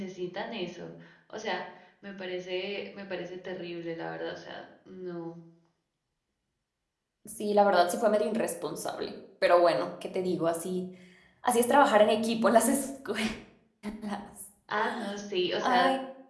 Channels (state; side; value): identical; both; correlation 1.00